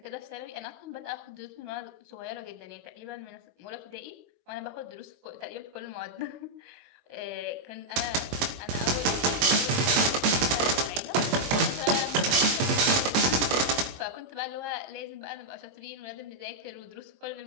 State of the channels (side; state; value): left; late; 22 ms